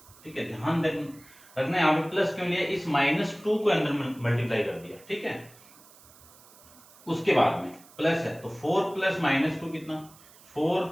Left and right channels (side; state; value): right; noise; hiss, 24 dB below the sound